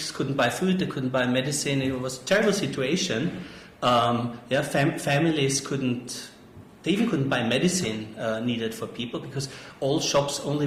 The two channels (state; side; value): identical; both; correlation 1.00